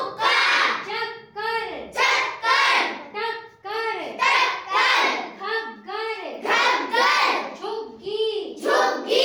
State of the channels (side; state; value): both; identical; correlation 1.00